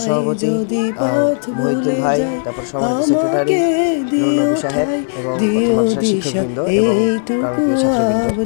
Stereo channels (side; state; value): right; silent; digital silence